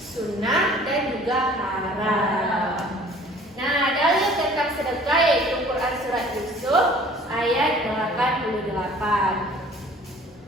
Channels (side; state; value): both; normal; correlation 0.51